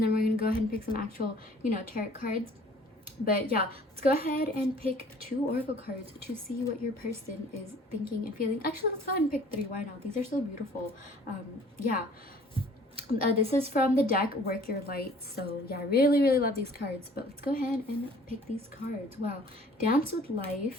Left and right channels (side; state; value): both; normal; correlation 0.53